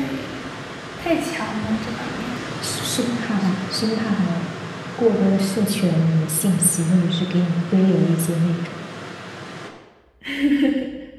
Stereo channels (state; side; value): identical; both; correlation 1.00